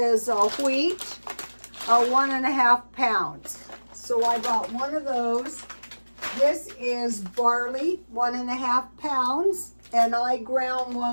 wheat, 1.5 pounds. So I bought one of those. This is barley, 1.5 pounds, and I ground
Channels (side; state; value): both; inverted; correlation -1.00